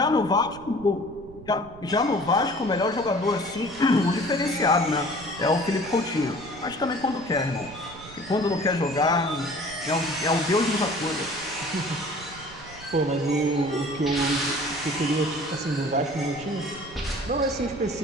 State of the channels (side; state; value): right; noise; rumble, 19 dB below the sound